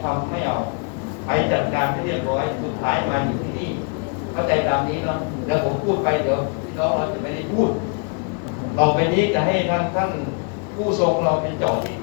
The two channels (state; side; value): quieter; right; 38.2 dB